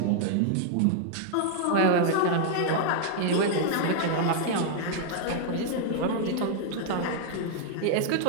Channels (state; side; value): different; both; correlation 0.00